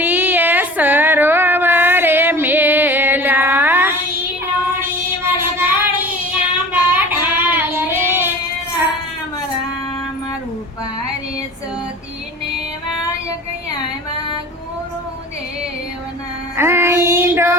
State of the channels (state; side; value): normal; both; correlation 0.39